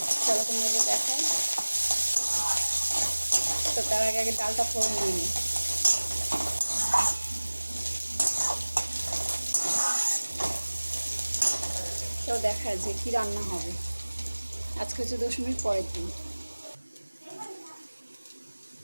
চলো তোমাকে দেখাই। তো তার আগে আগে ডালটা ফোড়ন দিয়ে নিই। তো দেখা যে কী রান্না হবে। আজকে হচ্ছে দশমীর পরের দিন।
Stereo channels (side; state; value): both; inverted; correlation -1.00